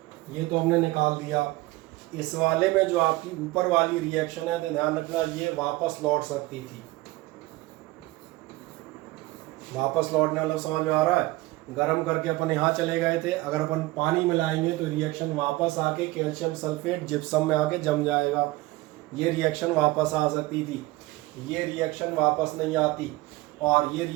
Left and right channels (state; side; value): quieter; left; 19.7 dB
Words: ये तो हमने निकाल दिया। इस वाले में जो आपकी ऊपर वाली रिएक्शन है तो ध्यान रखना ये वापस लौट सकती थी। वापस लौटने वाला समझ में आ रहा है? गर्म करके अपन यहाँ चले गए थे, अगर अपन पानी मिलाएंगे तो रिएक्शन वापस आके कैल्शियम सल्फेट जिप्सम में आके जम जाएगा। ये रिएक्शन वापस आ सकती थी, ये रिएक्शन वापस नहीं आती, और ये